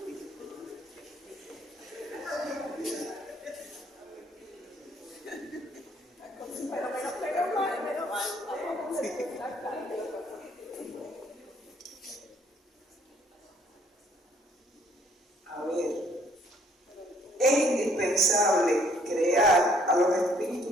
A ver, es indispensable crear a los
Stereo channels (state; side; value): normal; both; correlation 0.62